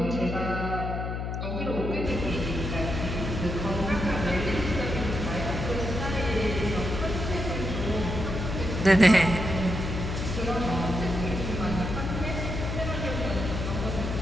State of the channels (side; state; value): left; noise; hum, 3 dB below the sound